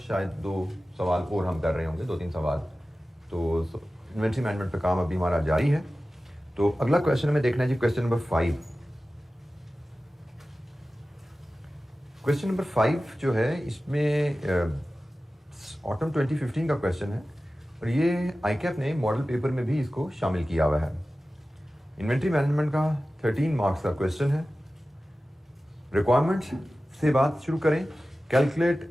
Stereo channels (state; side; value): normal; both; correlation 0.95